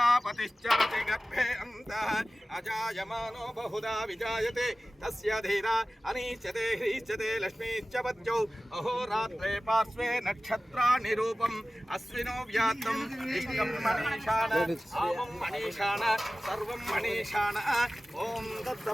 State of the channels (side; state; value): both; normal; correlation 0.97